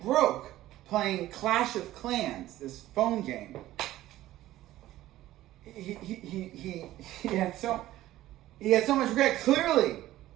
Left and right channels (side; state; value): left; quieter; 15.0 dB